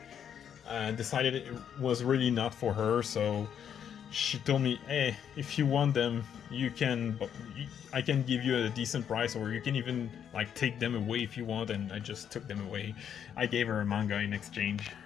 and decided it was really not for her, so she told me, hey, if you want them, I can give you a decent price, or you can even like take them away if you want. And I just took them away. I gave her a manga in exchange.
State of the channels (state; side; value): quieter; right; 8.6 dB